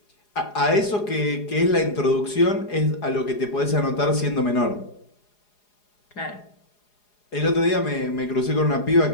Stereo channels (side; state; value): right; late; 4.8 ms